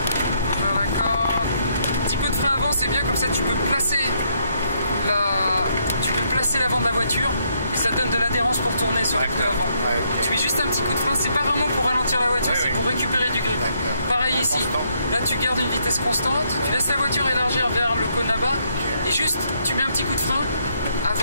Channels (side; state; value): both; inverted; correlation -0.73